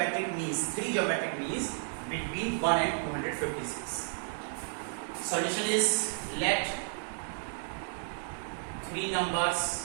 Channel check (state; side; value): silent; left; digital silence